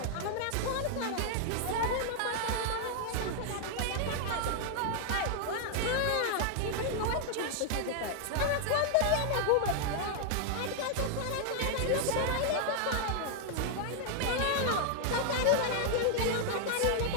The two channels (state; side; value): different; both; correlation 0.00